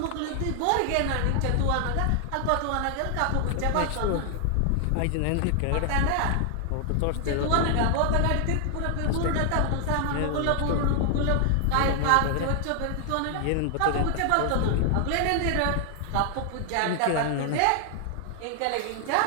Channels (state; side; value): different; both; correlation 0.00